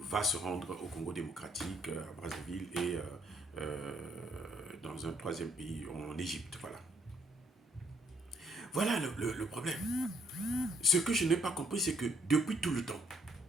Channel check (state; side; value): normal; both; correlation 0.66